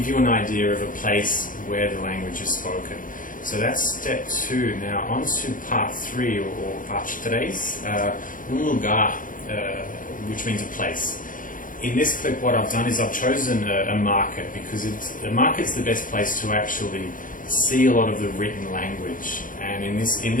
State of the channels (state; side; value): late; right; 0.39 ms